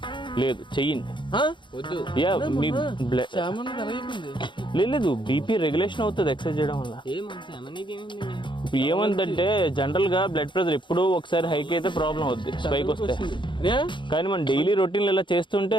లేదు చెయ్యండి. వద్దు. యా మీ బ్లడ్ లేదు, బీపీ రెగ్యులేషన్ అవుతుంది ఎక్సర్సైజ్ చేయడం వల్ల. ఇప్పుడు ఏమందంటే జనరల్గా బ్లడ్ ప్రెషర్ ఎప్పుడో ఒకసారి హైక్ అయితే ప్రాబ్లం అవుతుంది, స్పైక్ వస్తే. కానీ మనం డైలీ రొటీన్లో ఇలా చేస్తుంటే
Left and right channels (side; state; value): right; late; 0.23 ms